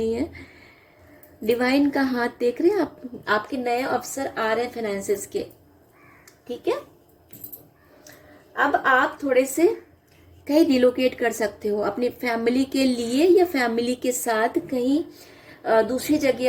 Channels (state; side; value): identical; both; correlation 1.00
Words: है। डिवाइन का हाथ देख रहे हैं आप, आपके नए अवसर आ रहे हैं फाइनेंसेस के, ठीक है। अब आप थोड़े से कहीं रिलोकेट कर सकते हो अपनी फैमिली के लिए, या फैमिली के साथ कहीं दूसरी